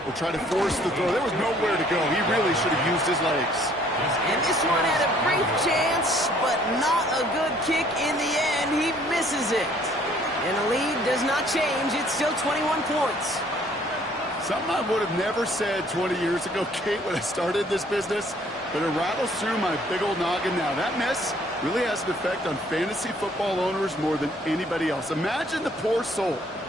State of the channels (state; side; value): normal; both; correlation 0.60